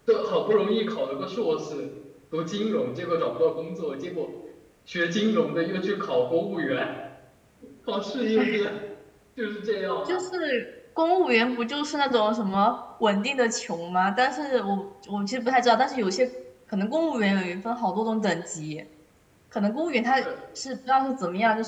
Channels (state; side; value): identical; both; correlation 1.00